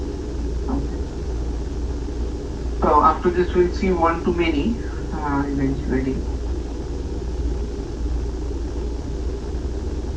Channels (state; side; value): identical; both; correlation 1.00